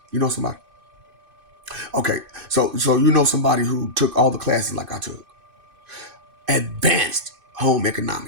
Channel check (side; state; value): left; late; 2.6 ms